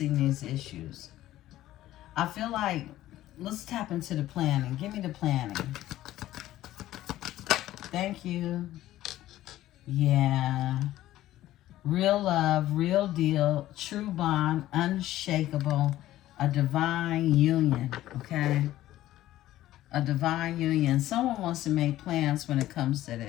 these issues. I feel like, let's tap into the planning. Give me the planning. Thank you. Yeah. Real love, real deal, true bond, unshakable, a divine union, okay? A divine union. Someone wants to make plans when it comes to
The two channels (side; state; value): right; quieter; 14.5 dB